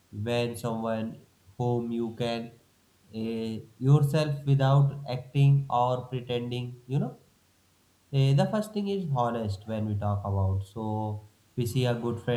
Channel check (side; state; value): both; identical; correlation 1.00